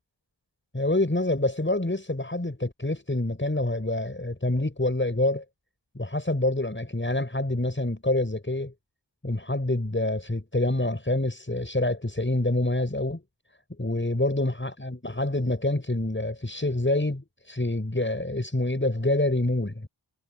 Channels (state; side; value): normal; both; correlation 0.39